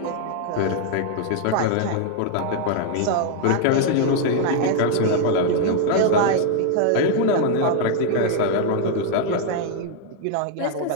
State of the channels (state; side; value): different; both; correlation 0.00